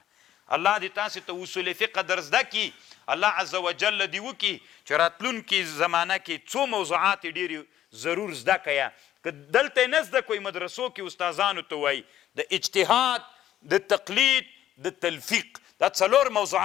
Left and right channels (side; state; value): right; quieter; 12.0 dB